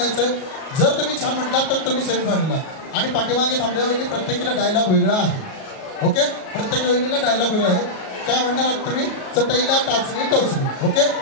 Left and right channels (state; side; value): late; right; 37 ms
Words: जर तुम्ही छान म्हटलात तर तुम्ही सेमीफायनलला आणि पाठीमागे थांबल्या वेळी प्रत्येकीला डायलॉग वेगळा आहे ओके प्रत्येक वेळीला डायलॉग वेगळा आहे काय म्हणणार आहात तुम्ही चटईला टाचणी टोचली ओके